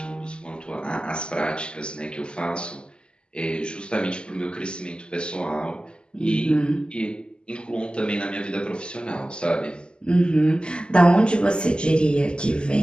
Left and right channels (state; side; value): late; right; 0.049 ms